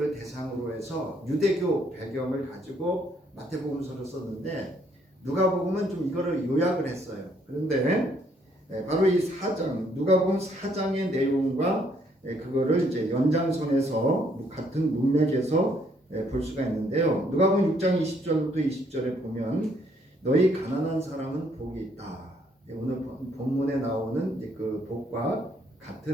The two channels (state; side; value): normal; both; correlation 0.68